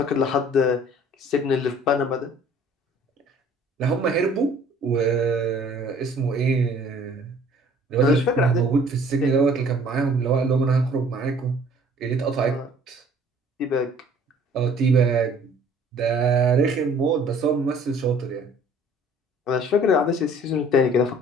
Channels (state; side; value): normal; both; correlation 0.54